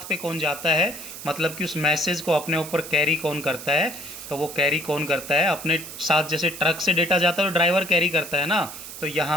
पे कौन जाता है, मतलब कि उस मैसेज को अपने ऊपर कैरी कौन करता है, तो वो कैरी कौन करता है अपने साथ, जैसे ट्रक से डेटा जाता है तो ड्राइवर कैरी करता है ना, तो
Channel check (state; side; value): noise; right; hiss, 11 dB below the sound